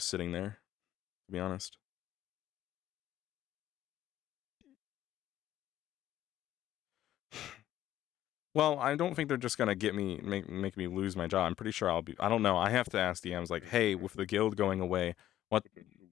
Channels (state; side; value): quieter; right; 12.9 dB